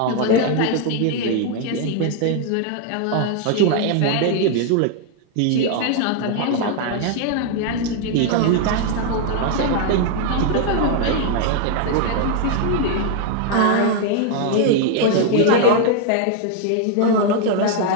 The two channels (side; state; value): both; different; correlation 0.00